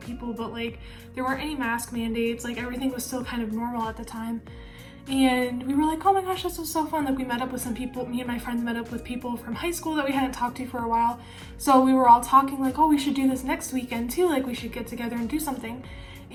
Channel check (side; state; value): both; identical; correlation 1.00